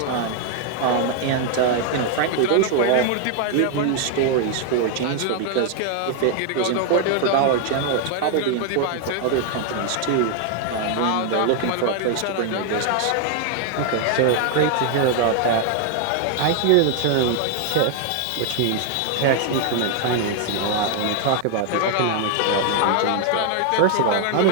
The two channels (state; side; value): different; both; correlation 0.00